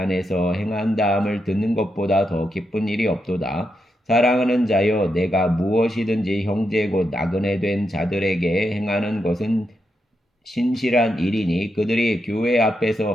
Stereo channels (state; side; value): normal; both; correlation 0.84